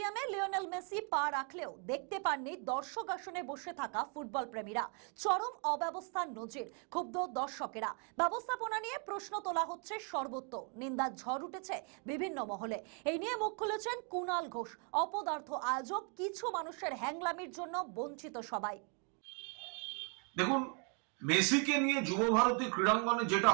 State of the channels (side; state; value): left; quieter; 38.4 dB